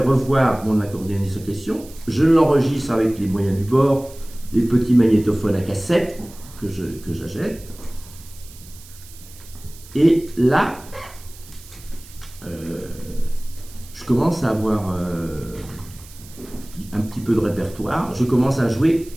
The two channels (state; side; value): noise; right; hiss, 20 dB below the sound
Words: mon accordéoniste en question. Je l'enregistre avec les moyens du bord, les petits magnétophones à cassette que j'achète. Et là, je commence à avoir un petit peu de répertoire. Je commence à jouer